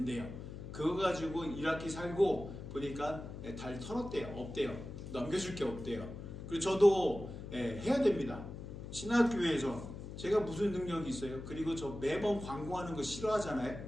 그거 가지고 1학기 살고 보니까 달 털었대요. 없대요. 넘겨줄 게 없대요. 그리고 저도 해야 됩니다. 신학교에서 제가 무슨 능력이 있어요? 그리고 저 매번 광고하는 거 싫어하잖아요.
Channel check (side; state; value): left; noise; hum, 10 dB below the sound